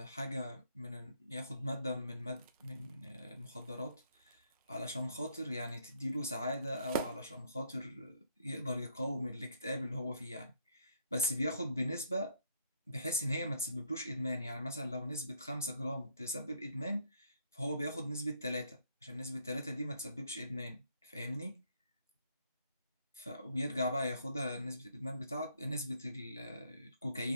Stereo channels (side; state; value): both; inverted; correlation -0.69